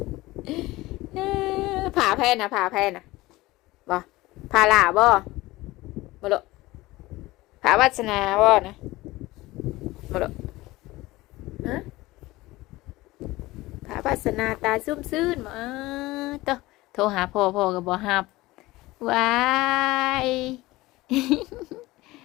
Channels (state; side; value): quieter; right; 19.2 dB